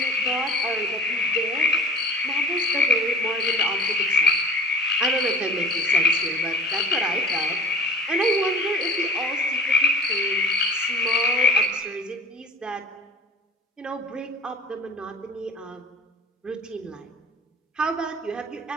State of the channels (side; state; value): both; normal; correlation 0.40